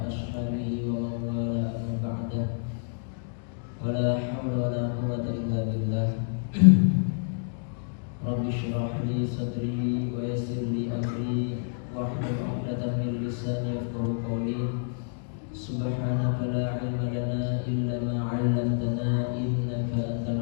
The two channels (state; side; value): silent; right; digital silence